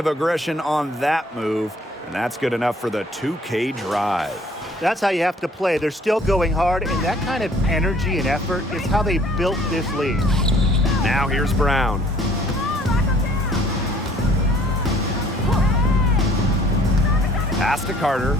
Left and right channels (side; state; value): both; normal; correlation 0.57